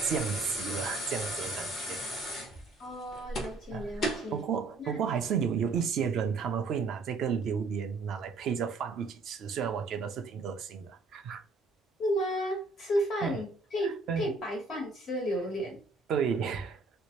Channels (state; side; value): quieter; left; 3.7 dB